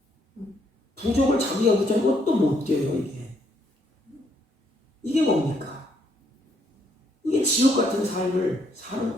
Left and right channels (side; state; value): both; normal; correlation 0.71